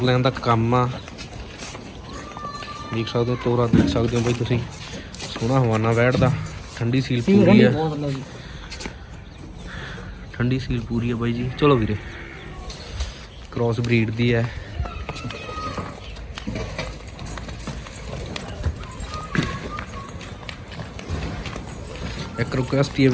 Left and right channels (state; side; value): identical; both; correlation 1.00